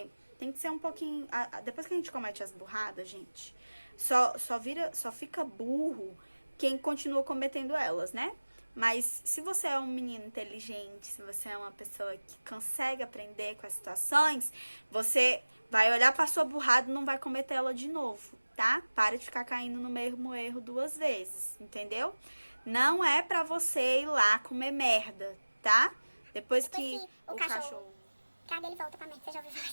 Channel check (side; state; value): both; inverted; correlation -1.00